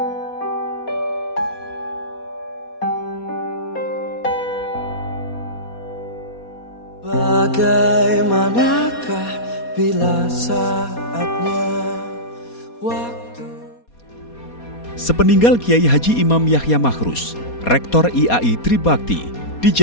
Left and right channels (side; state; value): right; late; 4.2 ms